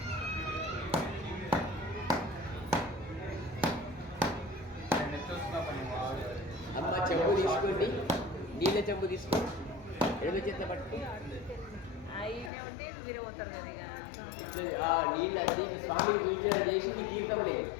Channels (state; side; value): drops out; right; at 12.5 s